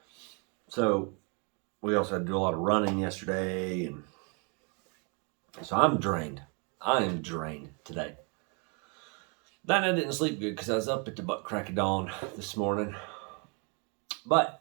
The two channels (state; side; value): quieter; left; 35.1 dB